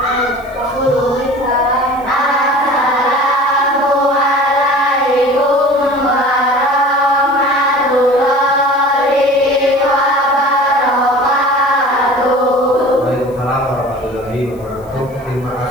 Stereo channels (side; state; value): left; noise; hiss, 28 dB below the sound